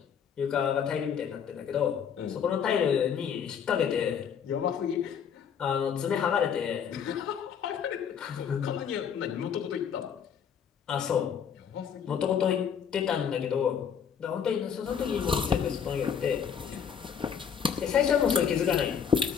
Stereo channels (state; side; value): quieter; right; 7.6 dB